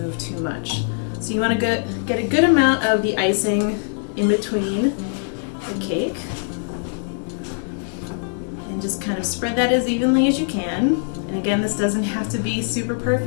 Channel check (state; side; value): silent; right; digital silence